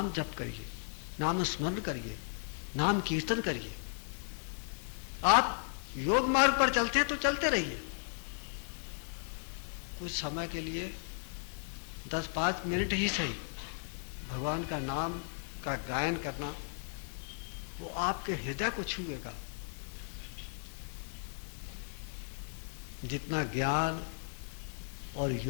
जप करिए, नाम स्मरण करिए, नाम कीर्तन करिए। आप योग मार्ग पर चलते हैं तो चलते रहिए। कुछ समय के लिए 10-5 मिनट ही सही भगवान का नाम का गायन करना, वो आपके हृदय को छुएगा। जितना ज्ञान और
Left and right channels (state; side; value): silent; right; digital silence